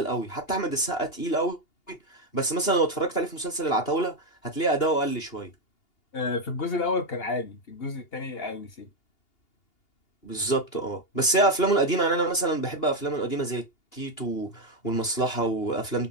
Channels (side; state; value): right; late; 2.8 ms